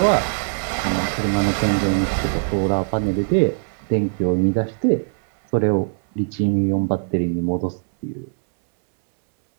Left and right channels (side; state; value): left; silent; 65 dB below the other